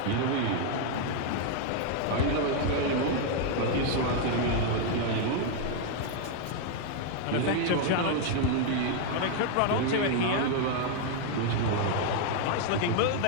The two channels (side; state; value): both; different; correlation 0.00